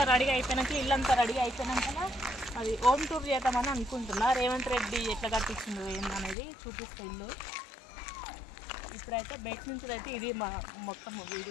రెడీ అయిపోయినాక ఇల్లంతా రెడీ అయిపోయినాక అది హోమ్ టూర్ చేద్దామని అనుకుంటున్నా. రేవంత్ రెడ్డి ఎట్లా కట్టించిండు ఏందనేది చూపిస్తా ఇల్లు. ఇప్పుడైతే బయట నుంచి అయితే ఇది మా మొత్తం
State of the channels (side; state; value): right; drops out; at 6.4 s